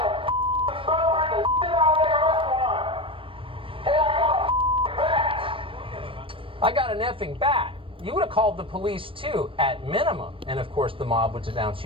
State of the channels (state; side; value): late; left; 0.25 ms